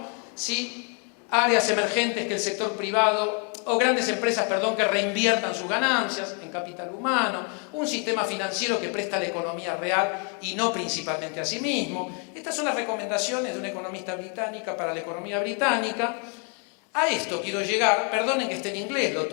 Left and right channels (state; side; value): quieter; right; 38.5 dB